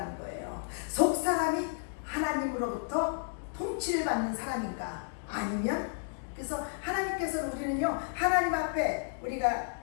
거예요. 속사람이 하나님으로부터 통치를 받는 사람인가, 아니면, 그래서 하나님께서는 우리는요, 하나님 앞에 우리가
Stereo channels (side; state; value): right; silent; digital silence